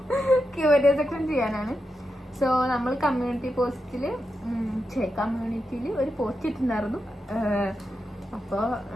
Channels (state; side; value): normal; both; correlation 0.87